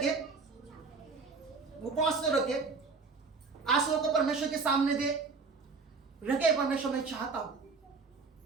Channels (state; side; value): quieter; left; 4.5 dB